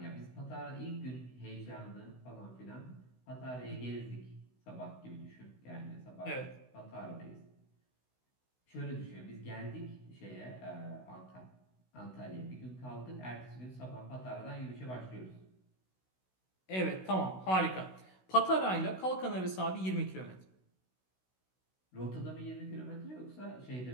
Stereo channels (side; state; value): right; late; 16 ms